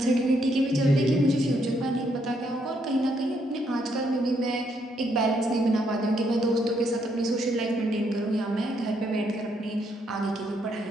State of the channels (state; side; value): normal; both; correlation 0.74